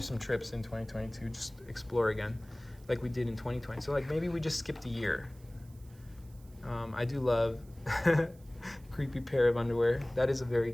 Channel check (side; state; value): right; noise; hiss, 28 dB below the sound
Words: some trips in 2022, just explore again like we did in 2020. So like maybe we just skipped a year. I do love Creepy Pair of Underwear. That is a very